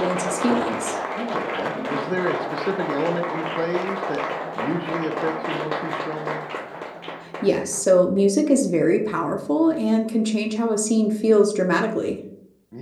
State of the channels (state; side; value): identical; both; correlation 1.00